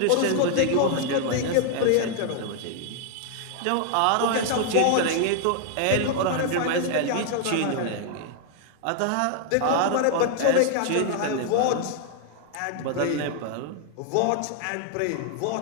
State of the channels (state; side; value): different; both; correlation 0.00